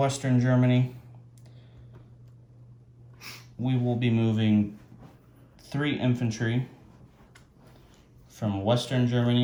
Germany. We will be moving 3 infantry from Western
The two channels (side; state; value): both; identical; correlation 1.00